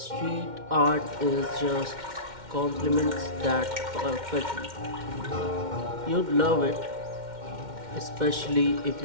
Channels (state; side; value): late; left; 2.1 ms